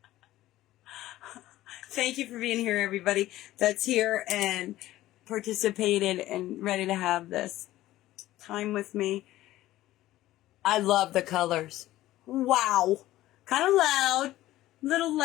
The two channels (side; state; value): right; quieter; 15.4 dB